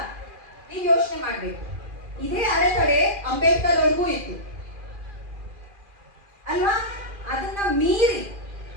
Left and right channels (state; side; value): late; left; 2.4 ms